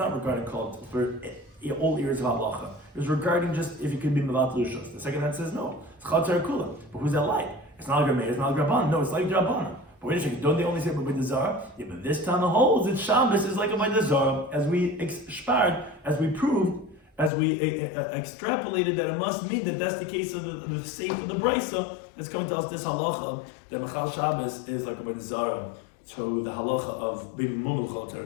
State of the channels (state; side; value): drops out; right; at 17.3 s